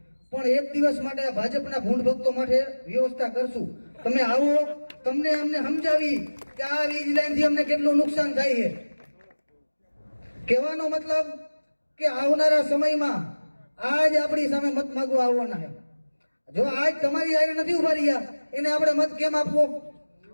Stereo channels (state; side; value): inverted; both; correlation -1.00